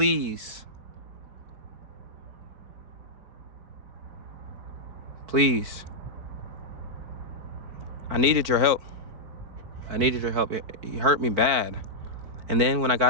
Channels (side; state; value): left; late; 4.5 ms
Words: I needed your help. It hurt me bad. And then when I